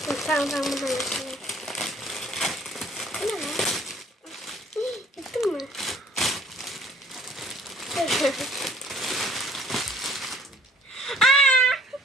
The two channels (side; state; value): both; normal; correlation 0.56